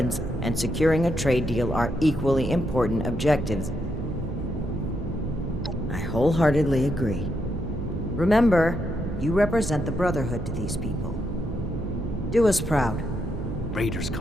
and securing a trade deal are equally important objectives. I wholeheartedly agree. Remember, you represent the Brotherhood to these people. Do us proud. Raiders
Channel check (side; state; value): right; noise; hum, 7 dB below the sound